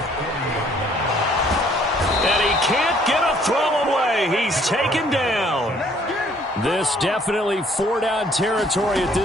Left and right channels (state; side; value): normal; both; correlation 0.61